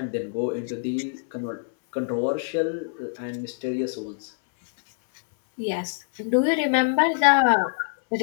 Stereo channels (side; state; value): right; silent; 61 dB below the other